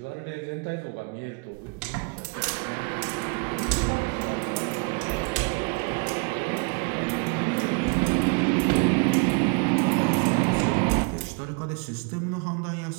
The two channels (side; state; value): left; quieter; 35.0 dB